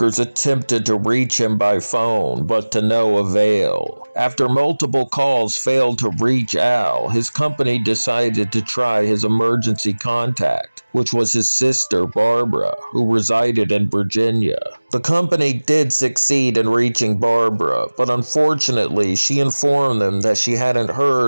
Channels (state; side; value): inverted; both; correlation -1.00